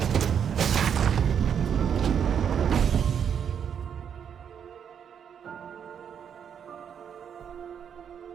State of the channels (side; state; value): left; quieter; 8.0 dB